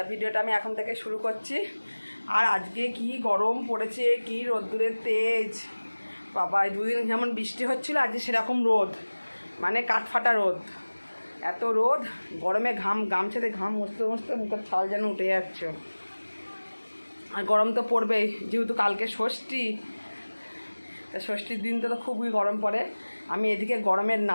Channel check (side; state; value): both; inverted; correlation -1.00